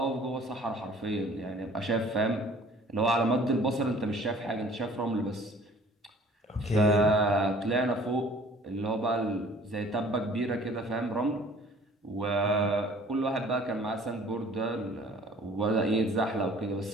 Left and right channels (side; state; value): both; normal; correlation 0.52